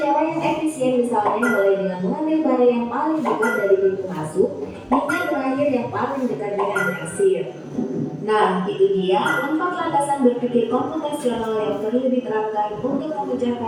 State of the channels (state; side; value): identical; both; correlation 1.00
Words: yang efisien misalnya mulai dengan mengambil barang yang paling dekat dari pintu masuk hingga terakhir yang paling dekat dengan kasir. Nah, itu dia 4 landasan berpikir komputasional yang perlu diterapkan untuk